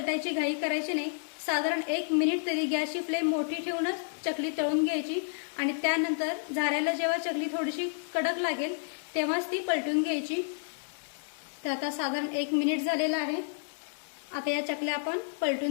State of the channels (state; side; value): silent; right; digital silence